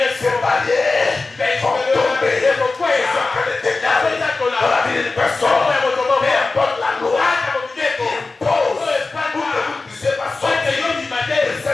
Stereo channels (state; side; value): quieter; right; 3.7 dB